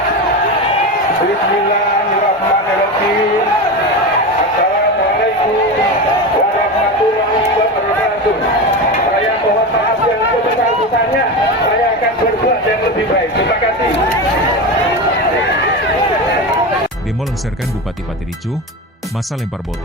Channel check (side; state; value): both; normal; correlation 0.22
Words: Bismillahirrahmanirrahim. Assalamualaikum warahmatullahi wabarakatuh. Saya mohon maaf yang sebesar-besarnya. Saya akan berbuat yang lebih baik. Terima kasih. Demo lengserkan Bupati Pati ricuh, massa lempar